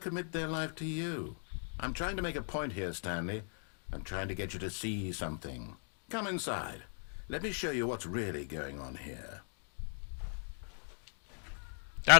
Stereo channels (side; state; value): right; silent; 53 dB below the other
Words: their life to you? I'm trying to make a point here, Stanley. I'm trying to get you to see something. Come inside. Let me show you what's really going on here.